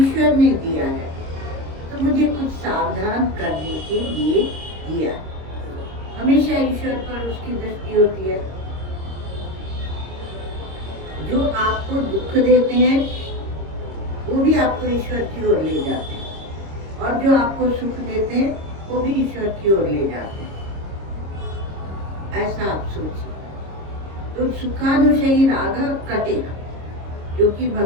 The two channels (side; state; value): left; late; 26 ms